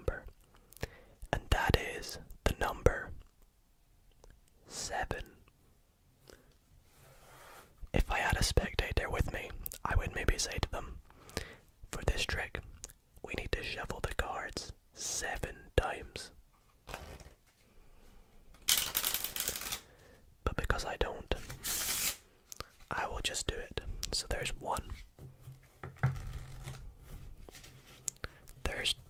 and that is the number 7. If I had a spectator with me, I would maybe say to them, for this trick, we need to shuffle the cards 7 times. But because I don't, I will just do it. So there's 1. There's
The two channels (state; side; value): identical; both; correlation 1.00